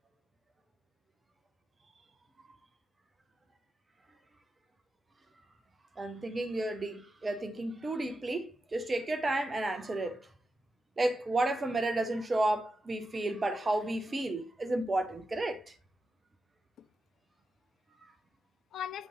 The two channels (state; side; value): normal; both; correlation 0.89